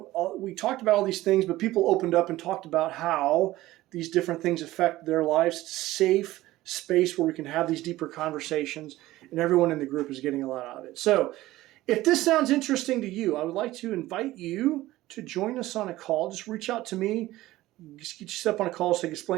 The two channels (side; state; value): left; quieter; 16.8 dB